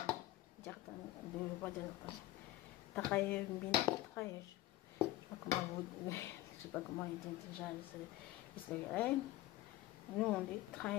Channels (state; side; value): quieter; right; 15.6 dB